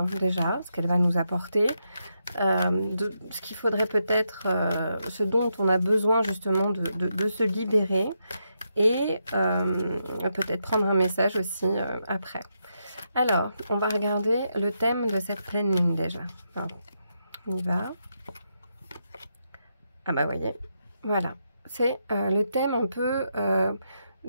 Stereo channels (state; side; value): inverted; both; correlation -0.82